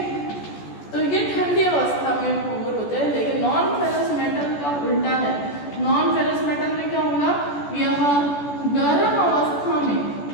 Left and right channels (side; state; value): right; late; 14 ms